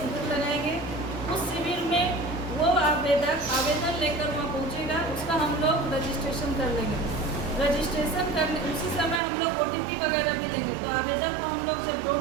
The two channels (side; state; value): left; drops out; at 9.2 s